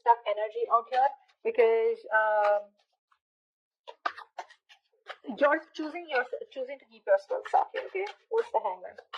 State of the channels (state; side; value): identical; both; correlation 1.00